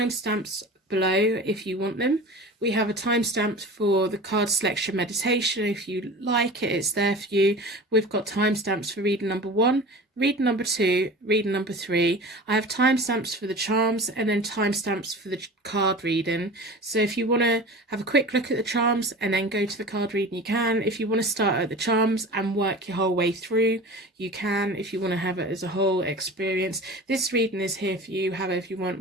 below if you want them. We have a timestamp for the card selection meditation. If you like it, it's there for you. We've got timestamps for reading number 1, reading number 2, reading number 3. I have timestamps for the charms and then timestamps for the card reading. So if you want to have a quick look at the charms and then go to the card reading, you can. If you want to start at the charms and work your whole way through, you can. If you want to have it as a whole experience, this reading is here for you however you want,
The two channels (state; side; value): normal; both; correlation 0.36